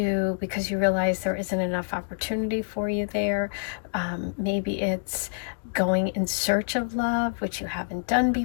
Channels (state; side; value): silent; right; digital silence